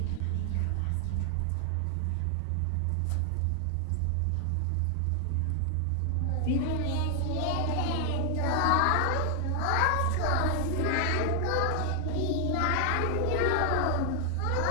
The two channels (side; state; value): both; different; correlation 0.00